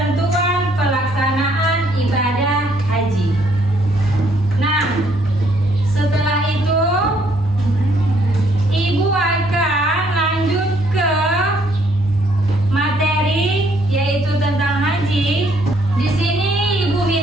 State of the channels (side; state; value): both; normal; correlation 0.67